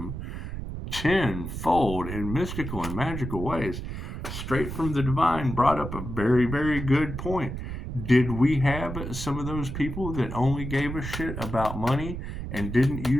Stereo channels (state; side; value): noise; right; rumble, 6 dB below the sound